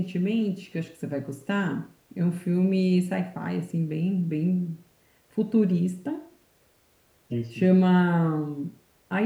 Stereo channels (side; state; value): both; identical; correlation 1.00